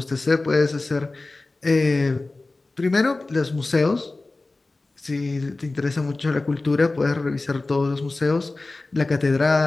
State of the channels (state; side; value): quieter; right; 3.2 dB